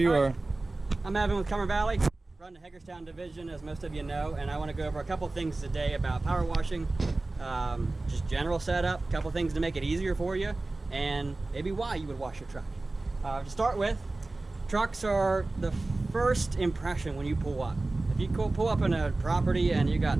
are. I'm Evan with Cumber Valley, run the Hagerstown division, as most of you know, and I want to go over a couple things today about power washing, just general setup, a couple things to make it easier for you, and maybe why you would wash your truck. To start with, trucks are the first impression when you pull up. If you pull up in a property and you got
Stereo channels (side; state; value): left; quieter; 3.1 dB